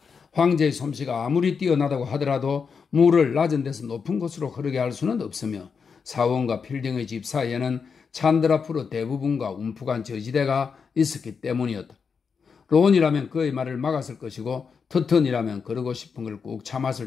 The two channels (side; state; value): right; quieter; 5.8 dB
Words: 황제의 솜씨가 아무리 뛰어나다고 하더라도 물을 낮은 데서 높은 곳으로 흐르게 할 수는 없으며 사원과 필딩의 집 사이에는 찬드라프로 대부분과 움푹한 저지대가 있었기 때문이었다. 론이라면 그의 말을 막았을 것이고 터턴이라면 그러고 싶은 걸 꾹